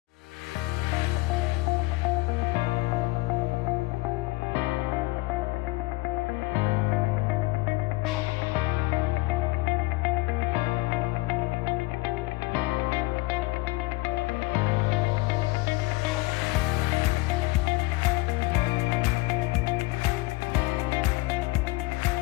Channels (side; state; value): right; quieter; 22.2 dB